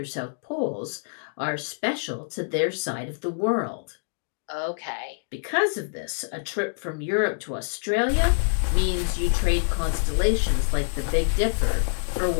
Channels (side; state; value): right; silent; digital silence